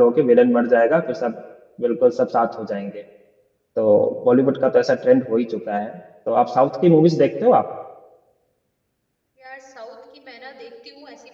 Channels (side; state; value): both; identical; correlation 1.00